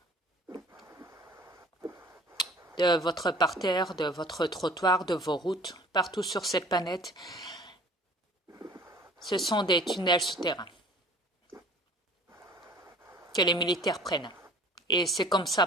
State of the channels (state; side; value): normal; both; correlation 0.47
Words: votre parterre, de votre trottoir, de vos routes, partout sur cette planète, ce sont des tunnels souterrains que les militaires prennent. Et c'est comme ça